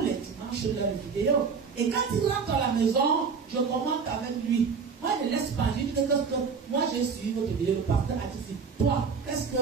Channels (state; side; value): quieter; left; 5.6 dB